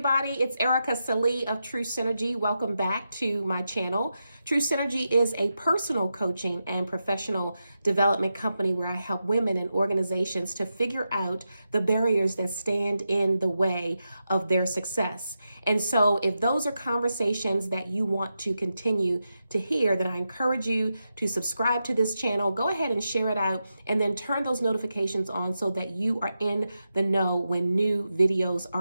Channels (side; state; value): both; inverted; correlation -0.88